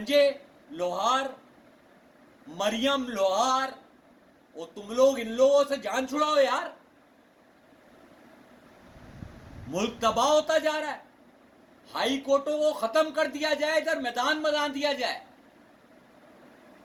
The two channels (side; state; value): both; identical; correlation 1.00